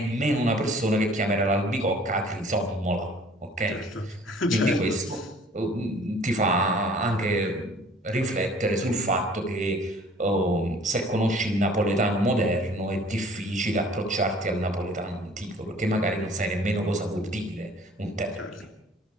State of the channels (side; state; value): both; normal; correlation 0.52